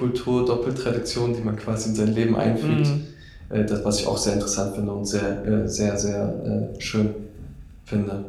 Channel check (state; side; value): identical; both; correlation 1.00